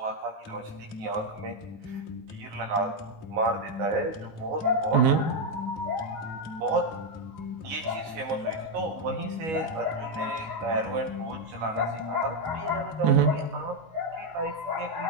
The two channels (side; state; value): left; late; 19 ms